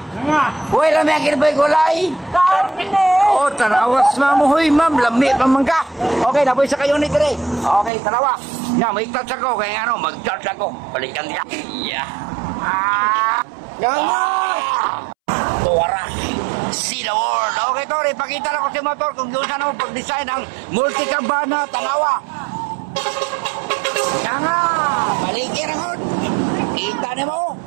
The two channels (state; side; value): drops out; left; at 7.9 s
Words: Uy, lami ang kinabay gulay. Oo, tanawas mo, huy, ma'am, lami pa man ka. Okay, napoy sa kayo ni dire. Okay, tanawa. Nga, may touch ako, kaya ano, mag-charge ako. Balikan niya. Yeah. Nga! Tuwara. See the world. Okay, Tor, ipakita na ko si motor kung doon saan ako pag-design ng multi-cabana, tanawa. Nga nga, balikir ako. Kita na mo.